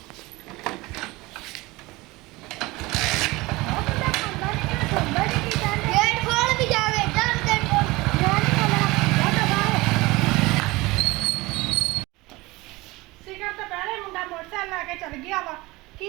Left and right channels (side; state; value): left; quieter; 21.6 dB